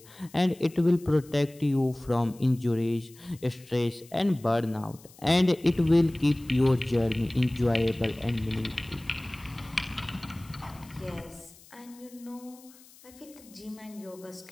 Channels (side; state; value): left; noise; hiss, 24 dB below the sound